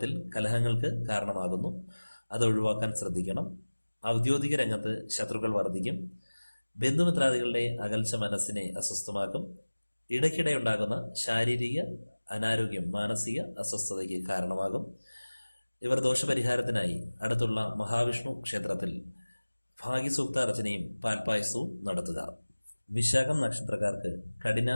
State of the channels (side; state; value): both; inverted; correlation -1.00